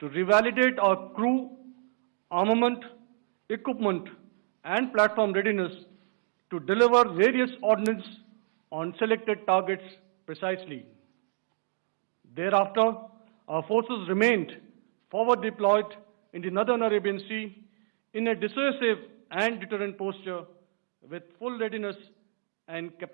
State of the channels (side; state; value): left; silent; digital silence